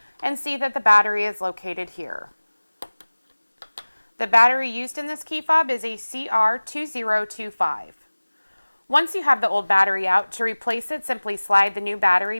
and see that the battery is located here. The battery used in this key fob is a CR2025. Once you have the old battery out, to replace it, simply slide the new battery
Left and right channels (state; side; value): inverted; both; correlation -1.00